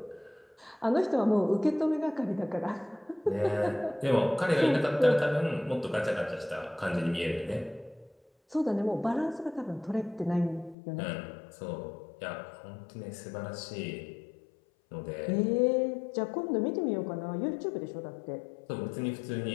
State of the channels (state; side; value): drops out; right; at 10.8 s